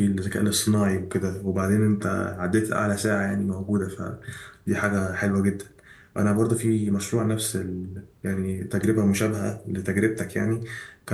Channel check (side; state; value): both; identical; correlation 1.00